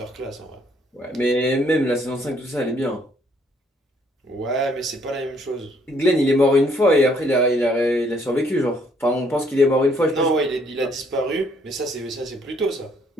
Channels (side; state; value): both; normal; correlation 0.66